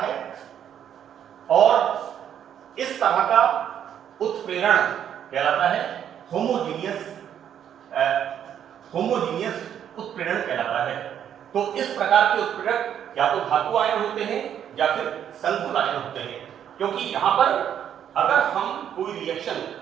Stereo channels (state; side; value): quieter; left; 9.4 dB